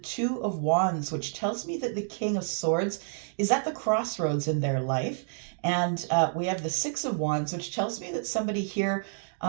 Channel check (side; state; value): left; silent; digital silence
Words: of Wands, which tells me that the King of Swords is at the crossroads in their life. And we have the Six of Wands, which tells me that somebody here,